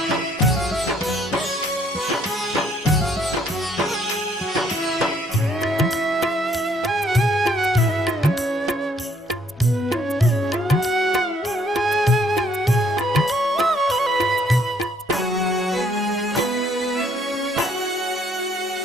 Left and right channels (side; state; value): both; normal; correlation 0.66